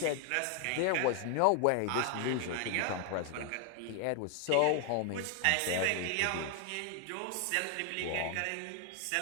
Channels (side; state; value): both; different; correlation 0.00